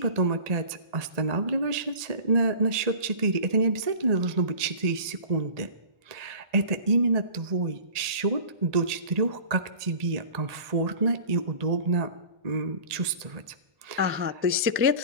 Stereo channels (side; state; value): left; late; 1.8 ms